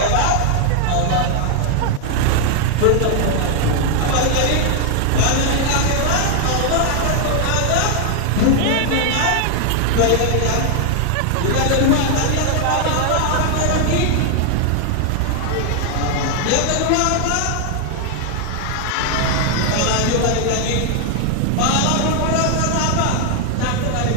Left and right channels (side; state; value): both; different; correlation 0.00